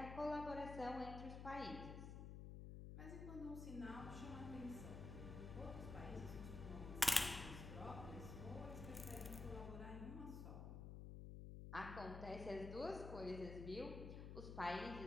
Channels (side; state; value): left; noise; hum, 6 dB below the sound